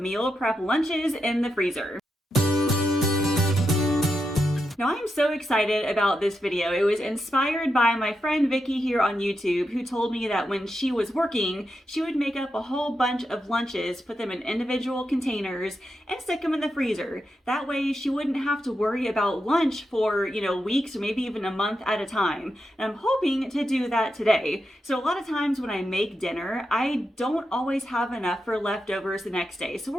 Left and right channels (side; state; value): both; normal; correlation 0.86